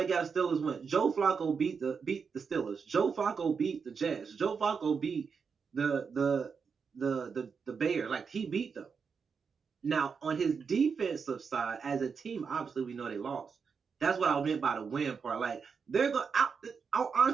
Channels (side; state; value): left; quieter; 5.8 dB